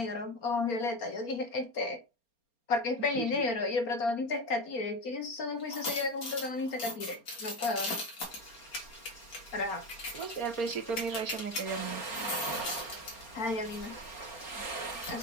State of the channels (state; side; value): late; right; 4.3 ms